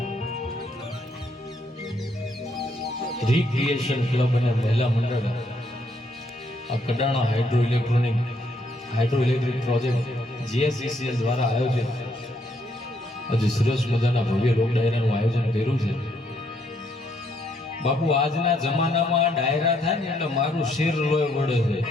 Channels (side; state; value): both; normal; correlation 0.72